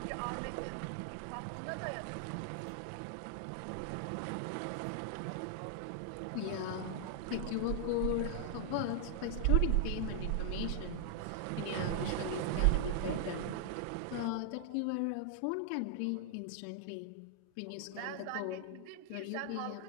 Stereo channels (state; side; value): different; both; correlation -0.01